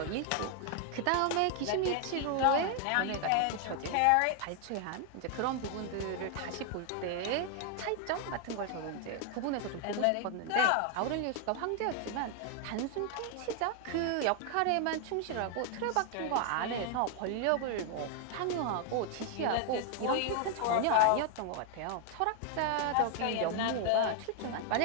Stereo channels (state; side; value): different; both; correlation 0.00